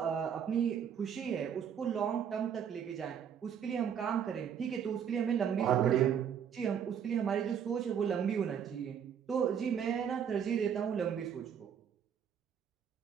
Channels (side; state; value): left; quieter; 8.1 dB